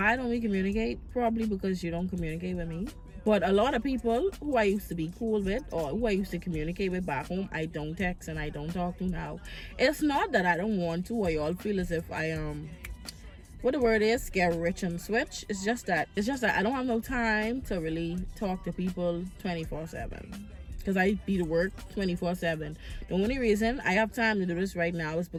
don't we communicate? Probably because you don't communicate with me. But a lot of people who I used to be cool with or who I used to communicate with back home, I don't text and I don't talk to now. It's not that I don't want to or y'all feel as if I what the word is, get rich and switch. It's just that I don't have no time to really talk to people 24/7 because I be to work 24/7. The only reason I have time to do this right now is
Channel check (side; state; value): both; identical; correlation 1.00